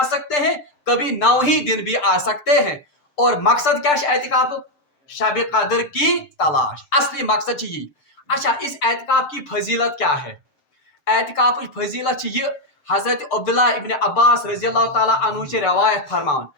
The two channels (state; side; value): late; right; 7.7 ms